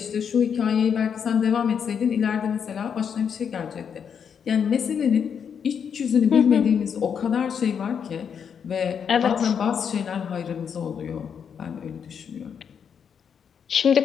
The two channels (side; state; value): right; quieter; 7.3 dB